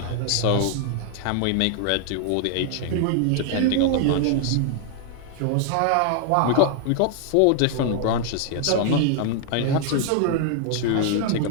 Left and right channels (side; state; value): both; different; correlation 0.00